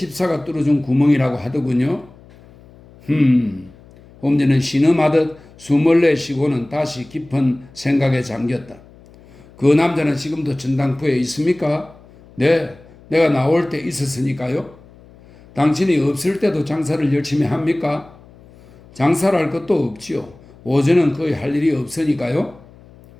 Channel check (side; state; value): left; noise; hum, 24 dB below the sound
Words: 뚫어준 구멍이라고 하더군요. 홈즈는 신음하듯 숨을 내쉬고는 다시 깊은 생각에 잠겼다. 그 남자는 지금도 전당포에 있습니까? 네, 내가 나올 때 있었으니까요. 당신이 없을 때도 장사를 열심히 합니까? 장사를 할 것도 없지요. 오전은 거의 할 일이 없으니까요.